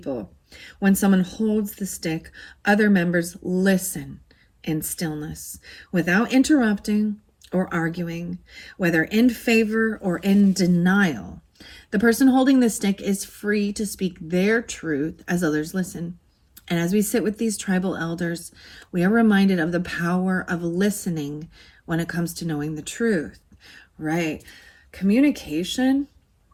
When someone holds the stick, other members listen in stillness, without interrupting or arguing, whether in favor or in denial. The person holding the stick is free to speak their truth as others listen. And as we sit with these tribal elders, we are reminded of the power of listening when it comes to knowing the truth, right? Communication,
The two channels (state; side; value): identical; both; correlation 1.00